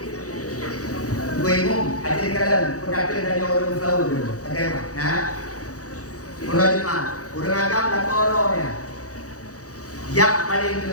Gue umum, ajar kalian perkataan dari orang selalu dulu. Bagaimana? Nah, urang agam dan orangnya. Yang paling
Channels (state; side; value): late; right; 0.66 ms